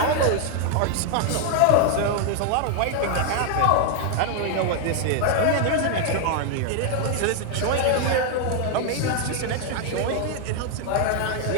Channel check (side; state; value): both; different; correlation 0.00